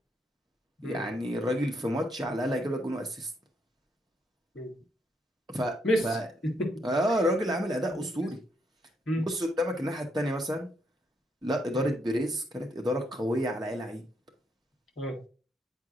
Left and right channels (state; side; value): normal; both; correlation 0.76